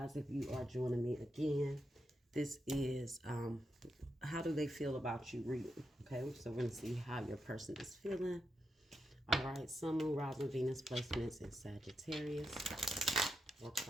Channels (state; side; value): normal; both; correlation 0.85